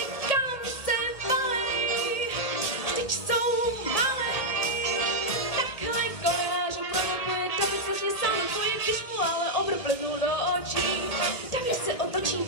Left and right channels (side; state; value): right; late; 1.8 ms